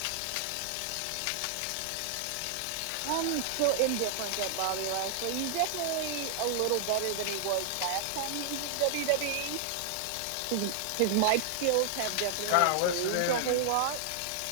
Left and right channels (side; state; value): both; different; correlation -0.01